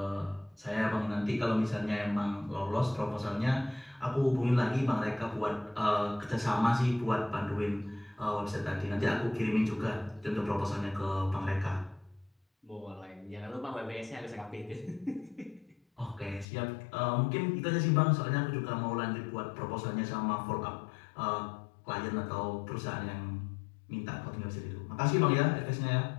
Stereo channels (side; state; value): right; drops out; at 16.4 s